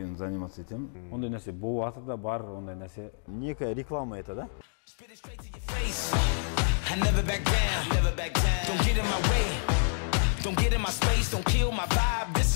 заниматься етем. Ондай нәрсе бұл атыда бар, ондай нәрсе. Некая реклама это, да? I never back down, never back down. Don't get in my way, don't get in my space, don't kill my vibe, this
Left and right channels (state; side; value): silent; right; digital silence